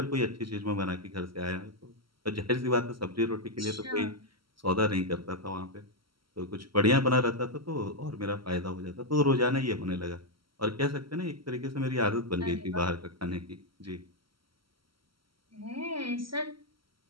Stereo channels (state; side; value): late; left; 0.74 ms